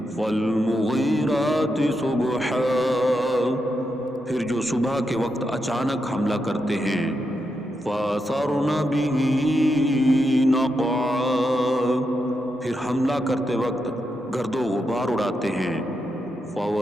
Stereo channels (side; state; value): both; normal; correlation 0.84